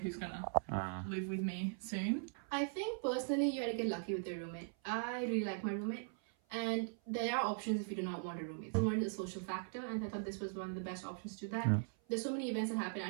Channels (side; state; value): left; silent; 51 dB below the other